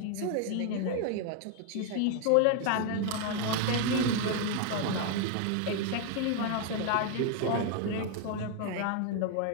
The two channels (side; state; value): both; different; correlation 0.00